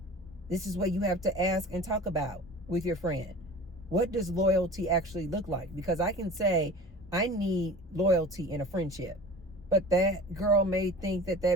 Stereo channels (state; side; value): normal; both; correlation 0.39